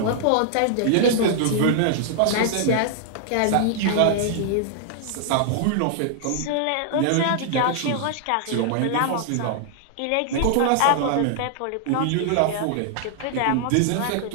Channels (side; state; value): both; different; correlation -0.01